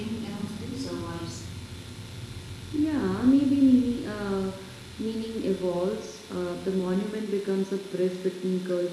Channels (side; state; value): both; identical; correlation 1.00